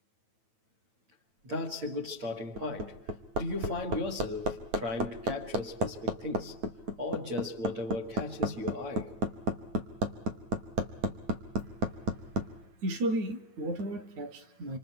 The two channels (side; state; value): left; late; 9.2 ms